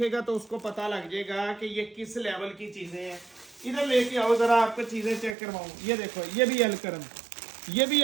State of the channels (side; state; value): left; drops out; at 5.4 s